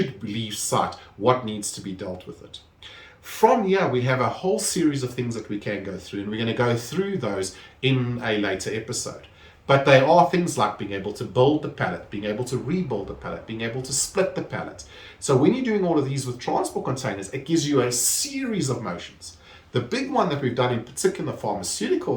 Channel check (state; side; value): identical; both; correlation 1.00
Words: leave site, what needs to be dealt with it. From here, we have a whole series of things that we can go through, and we're going to go through those in a later episode. But they are things like being able to build the pallet, being able to rebuild the pallet, being able to split the pallet. So when you're doing all of these with transport containers, it gives you a series of motions. The big one that we've done in particular